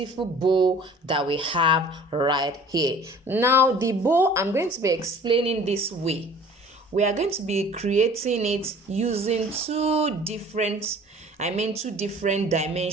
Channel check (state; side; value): normal; both; correlation 0.47